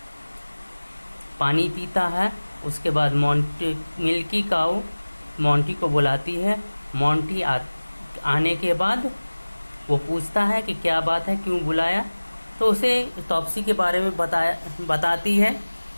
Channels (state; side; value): inverted; both; correlation -1.00